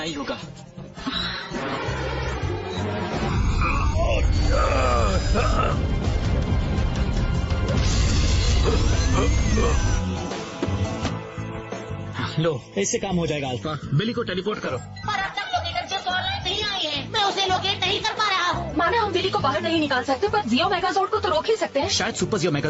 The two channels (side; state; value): both; identical; correlation 1.00